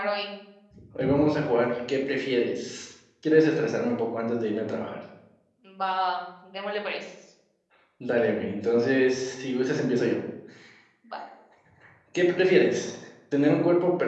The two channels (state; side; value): identical; both; correlation 1.00